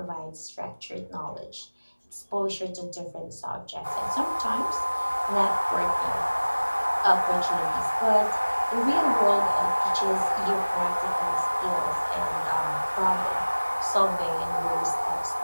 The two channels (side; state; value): both; inverted; correlation -1.00